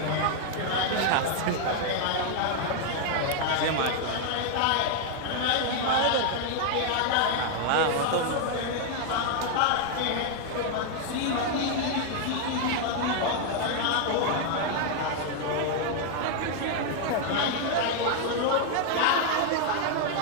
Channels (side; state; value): both; different; correlation 0.00